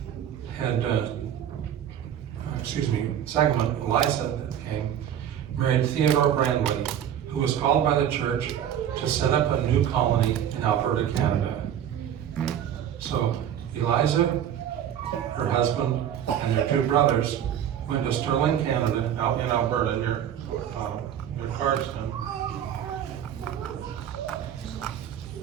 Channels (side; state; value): left; quieter; 10.0 dB